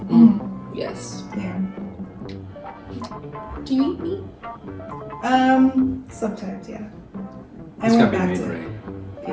Yes. Yeah. Do you eat meat? Sometimes, yeah. I It's went gotta be back made to, right. yeah.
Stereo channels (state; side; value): identical; both; correlation 1.00